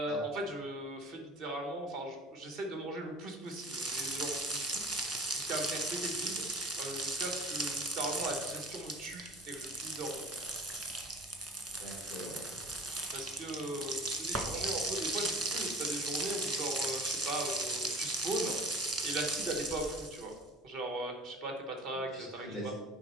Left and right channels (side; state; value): both; normal; correlation 0.41